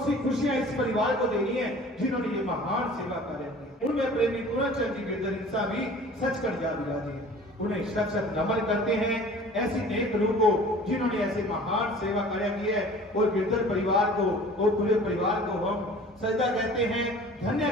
सी खुशियां इस परिवार को देनी है जिन्होंने ये महान सेवा कार्य किया। उनमें प्रेमी पूरन चंद जी गिरधर इंसान भी सच कर जा विराजे हैं। उन्हें शत शत नमन करते हैं ऐसी नेक रूह को जिन्होंने ऐसे महान सेवा कार्य की है। और गिरधर परिवार को और पूरे परिवार को हम सजदा कहते हैं, धन्य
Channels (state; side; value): normal; both; correlation 0.45